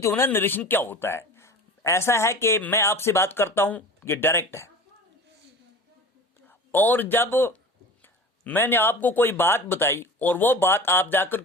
हो ना नरेशन क्या होता है? ऐसा है कि मैं आपसे बात करता हूं, ये डायरेक्ट है, और जब मैंने आपको कोई बात बताई और वो बात आप जाकर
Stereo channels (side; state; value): both; normal; correlation 0.36